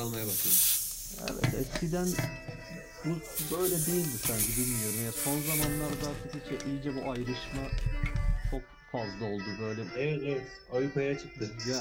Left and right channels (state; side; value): identical; both; correlation 1.00